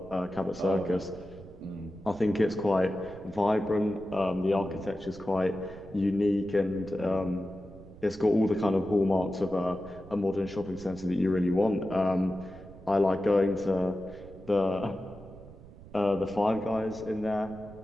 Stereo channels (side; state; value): right; noise; rumble, 18 dB below the sound